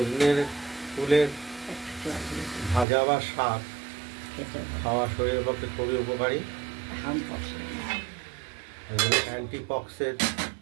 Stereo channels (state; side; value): drops out; left; at 2.9 s